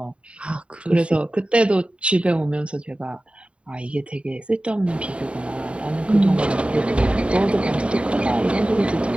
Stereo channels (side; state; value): left; late; 0.059 ms